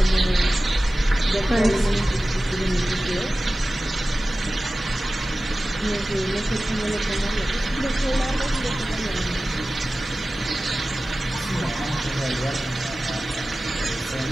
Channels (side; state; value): both; normal; correlation 0.96